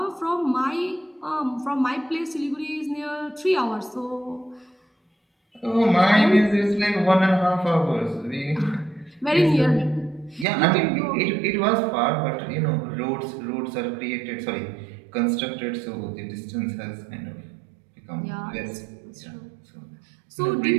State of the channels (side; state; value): left; drops out; at 10.5 s